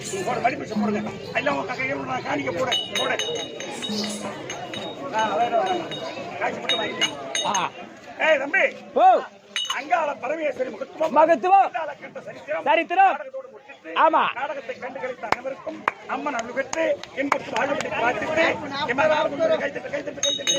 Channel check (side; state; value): both; identical; correlation 1.00